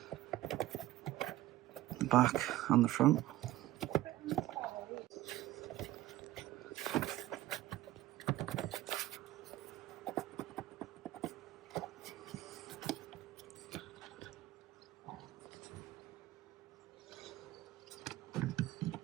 back and the front.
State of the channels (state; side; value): quieter; left; 15.9 dB